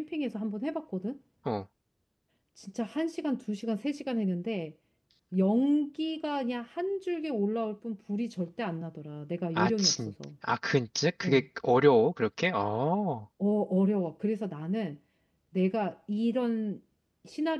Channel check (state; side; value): identical; both; correlation 1.00